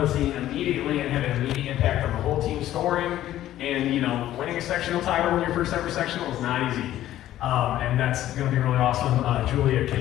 the scene immediately and had an immediate impact on the whole team scoring. And winning a sectional title in your first ever sectional is not easy, and that's going to be really awesome. Julia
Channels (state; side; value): quieter; right; 13.3 dB